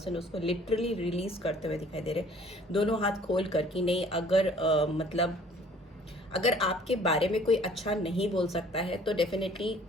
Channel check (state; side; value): normal; both; correlation 0.54